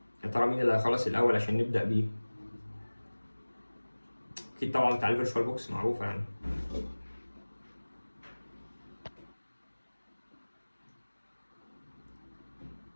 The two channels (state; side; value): inverted; both; correlation -1.00